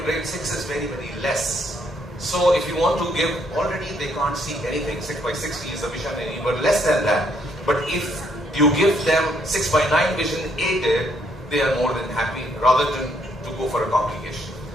grade 6 is very, very less. So if you want to give, already they can't see anything. 6 by 60 is the vision, and even less than that. But if you give them 6 by 9 vision aided, they are more than happy rather than to go for a complication.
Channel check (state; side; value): normal; both; correlation 0.70